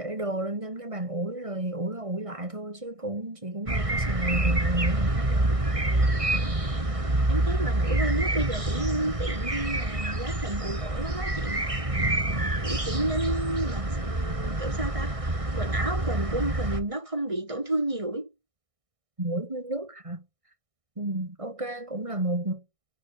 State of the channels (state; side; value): late; left; 1.6 ms